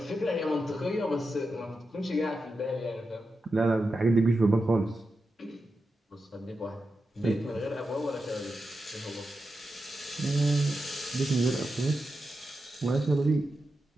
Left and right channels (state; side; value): normal; both; correlation 0.89